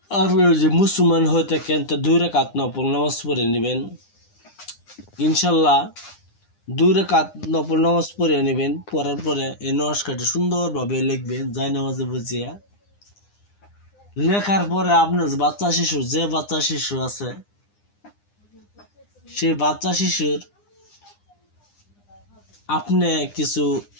আপনি যে মুসলমান হয়ে থাকেন তো 2 রাকাত নফল নামাজ পড়ে নেবেন। ইনশাল্লাহ 2 রাকাত নফল নামাজ পড়ে নেবেন। পড়ার পরে এই নস্কারটি সুন্দরভাবে লিখবেন যাই নামাজে বুঝিয়া। লেখার পরে আপনার যে বাচ্চা শিশু আছে, সেই বাচ্চা শিশুর আপনি কিছু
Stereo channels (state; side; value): late; right; 9.9 ms